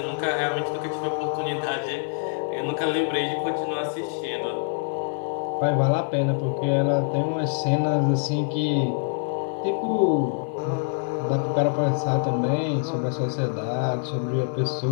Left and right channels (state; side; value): silent; right; digital silence